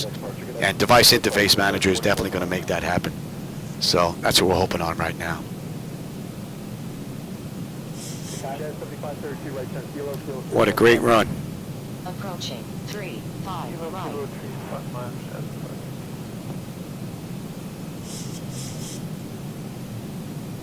And Device Interface Manager is definitely going to make that happen. So that's what we're hoping on right now. What a great run. Approaching 3-5 right.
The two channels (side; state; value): both; identical; correlation 1.00